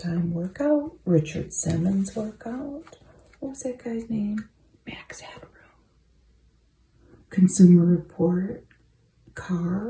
Workout, Richard Simmons Workout. What was that guy's name? Max Hadrow. Consumer Report,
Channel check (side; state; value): both; identical; correlation 1.00